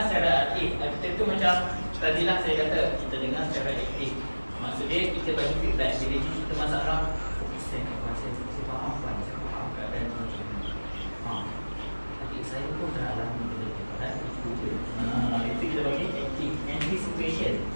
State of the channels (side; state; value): both; inverted; correlation -1.00